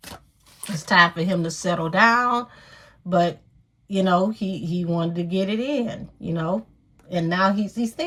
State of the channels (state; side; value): identical; both; correlation 1.00